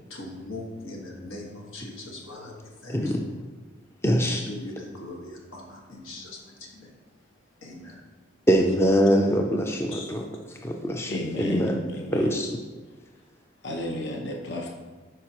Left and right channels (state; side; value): normal; both; correlation 0.73